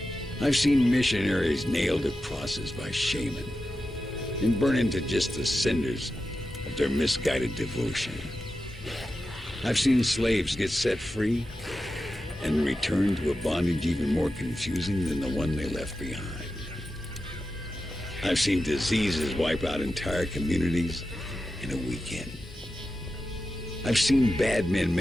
I've seen missionaries nailed to crosses by shaman and burn into just the cinders of their misguided devotion. I've seen slaves get set free and return to a bondage even more confusing than the one they left behind. I've seen diseases wipe out entire communities in a weekend. I've seen bad men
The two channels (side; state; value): both; normal; correlation 0.92